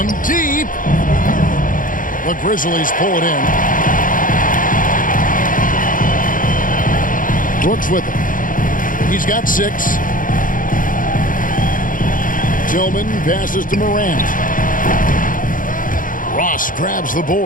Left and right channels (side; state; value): right; late; 0.39 ms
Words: deep. The Grizzlies pull it in. Brooks with it. He's got 6. Tillman passes to Morant. Ross grabs the